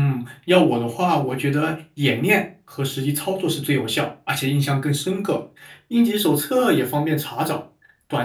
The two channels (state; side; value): identical; both; correlation 1.00